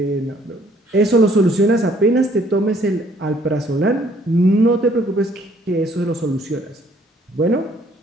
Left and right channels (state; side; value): normal; both; correlation 0.62